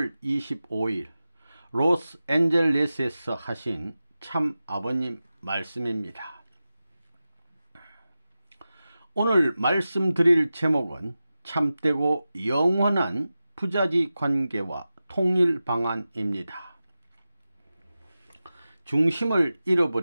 25일 로스앤젤레스에서 하신 참 아버님 말씀입니다. 오늘 말씀드릴 제목은 참되고 영원한 부자지 관계와 통일 방안입니다. 중심을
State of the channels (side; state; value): both; inverted; correlation -0.94